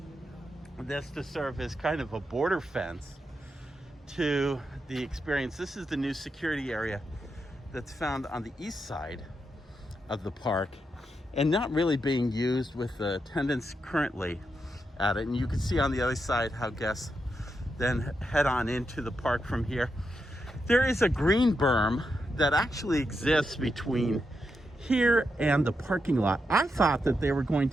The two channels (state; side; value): normal; both; correlation 0.85